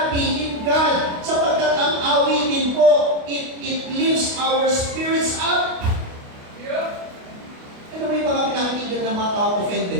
in God. Sapagkat ang awitin po, it lifts our spirits up. Ano ba yung mga pinakikinggan ng mga tao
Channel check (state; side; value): late; left; 28 ms